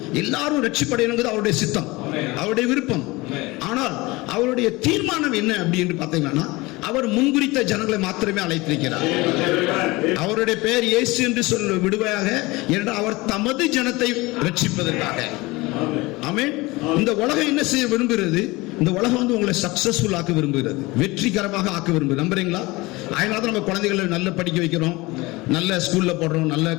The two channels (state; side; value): quieter; right; 22.3 dB